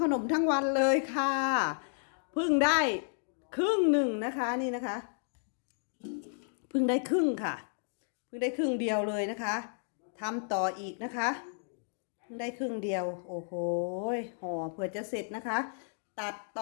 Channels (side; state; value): right; silent; digital silence